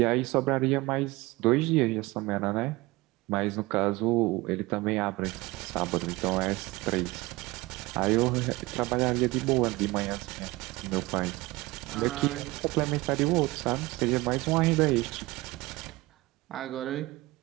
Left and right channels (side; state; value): left; quieter; 21.0 dB